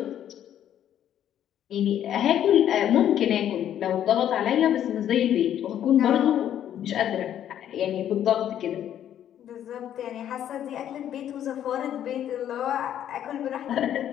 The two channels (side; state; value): right; quieter; 10.6 dB